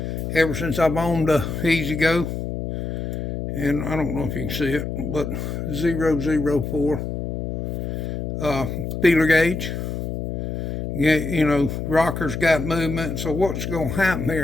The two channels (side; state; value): left; noise; hum, 4 dB below the sound